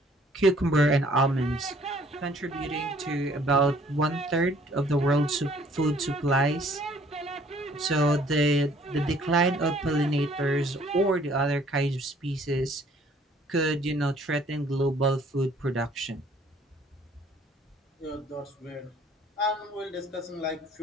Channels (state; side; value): normal; both; correlation 0.59